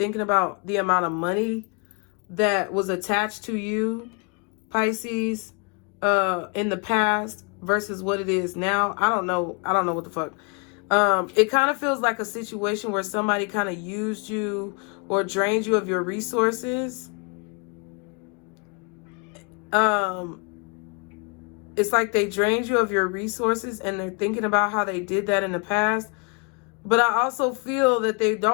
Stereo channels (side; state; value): right; quieter; 34.7 dB